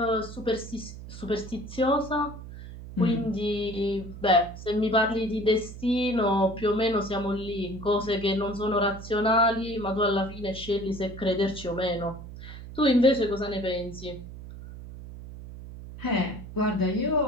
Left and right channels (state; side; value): noise; right; hum, 13 dB below the sound